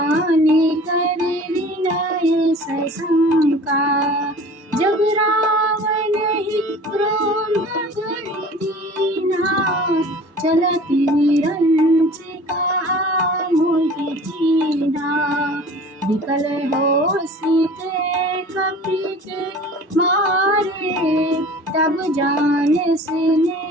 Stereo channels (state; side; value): normal; both; correlation 0.43